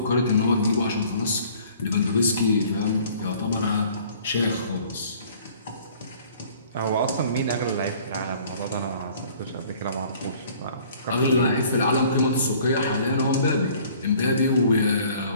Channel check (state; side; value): inverted; both; correlation -0.54